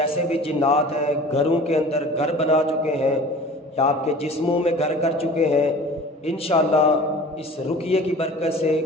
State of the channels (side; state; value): both; normal; correlation 0.42